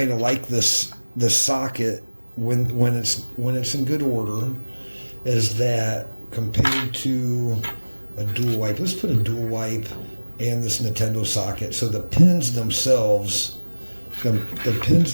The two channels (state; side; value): inverted; both; correlation -1.00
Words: of like this socket when it's in good order is that compared to a dual wipe. Let's put a dual wipe and this Nintendo socket. So the pins themselves,